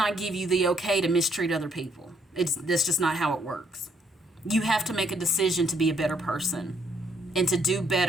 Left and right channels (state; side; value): normal; both; correlation 0.69